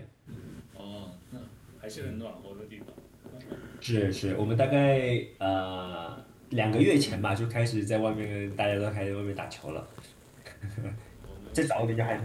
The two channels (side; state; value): both; identical; correlation 1.00